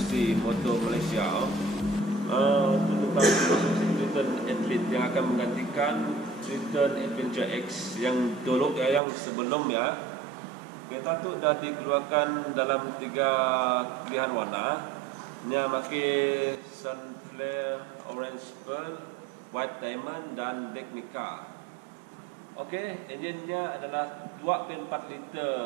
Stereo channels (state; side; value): drops out; left; at 9.0 s